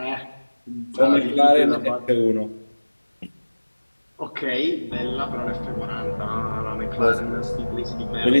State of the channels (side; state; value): both; inverted; correlation -1.00